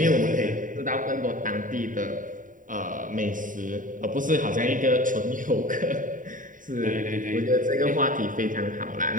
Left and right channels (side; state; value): left; late; 0.38 ms